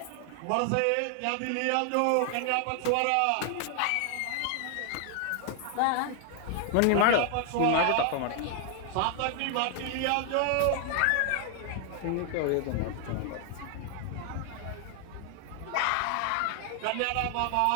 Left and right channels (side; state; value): both; different; correlation 0.00